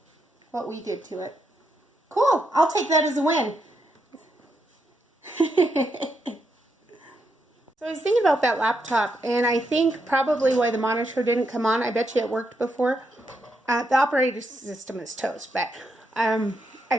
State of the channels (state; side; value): normal; both; correlation 0.81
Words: what we did to it. Cool. I'll take that as a win. So I was thinking about that laptop, and I think probably why the monitor didn't come on, I bet you it worked before. The operating system is toast, but